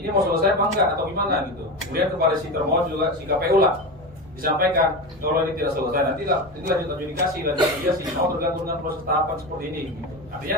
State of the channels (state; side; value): normal; both; correlation 0.22